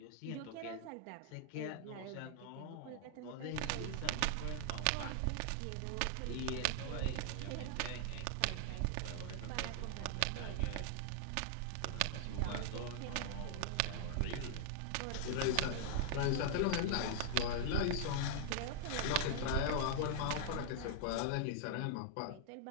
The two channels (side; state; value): both; different; correlation -0.01